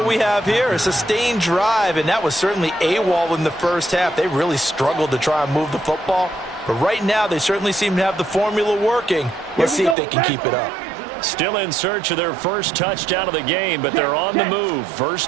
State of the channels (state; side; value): drops out; left; at 10.0 s